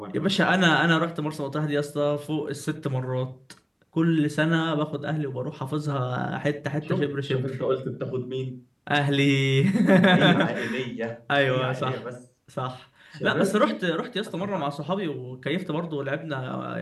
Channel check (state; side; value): identical; both; correlation 1.00